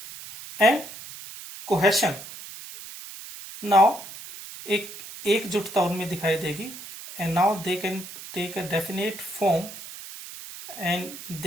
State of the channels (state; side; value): noise; right; hiss, 13 dB below the sound